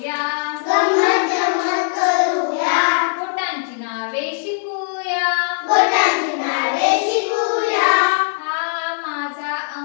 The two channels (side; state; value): right; silent; digital silence